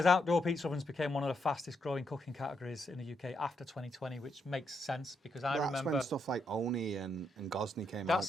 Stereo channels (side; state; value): both; normal; correlation 0.78